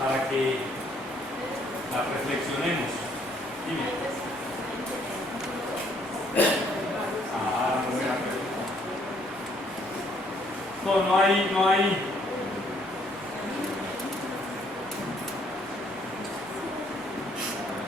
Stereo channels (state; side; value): normal; both; correlation 0.66